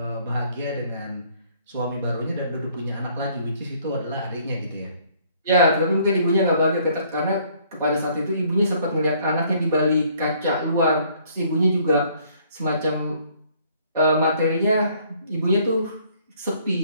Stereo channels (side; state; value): both; inverted; correlation -0.62